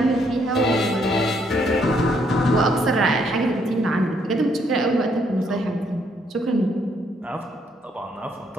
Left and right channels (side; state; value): both; normal; correlation 0.71